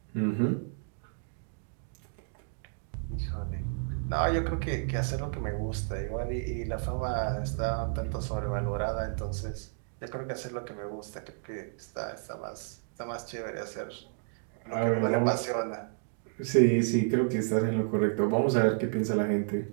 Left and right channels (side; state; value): left; silent; digital silence